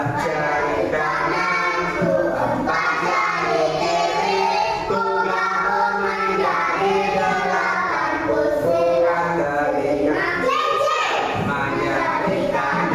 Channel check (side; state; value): both; identical; correlation 1.00